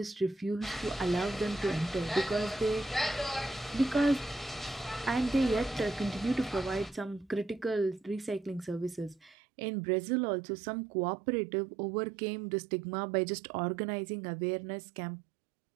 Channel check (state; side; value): drops out; left; at 9.3 s